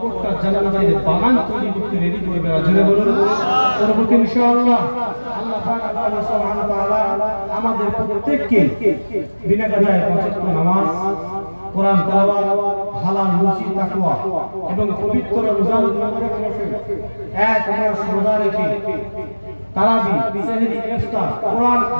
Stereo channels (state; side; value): inverted; both; correlation -1.00